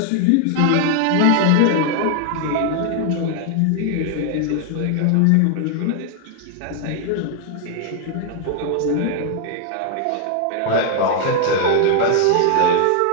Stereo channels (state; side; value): different; both; correlation 0.00